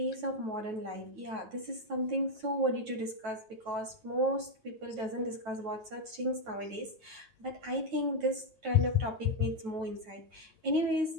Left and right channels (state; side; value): late; left; 9.2 ms